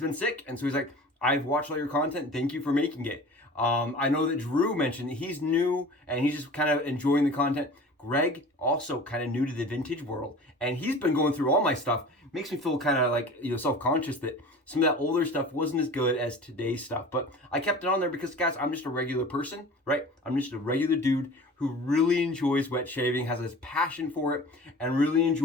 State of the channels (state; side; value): normal; both; correlation 0.40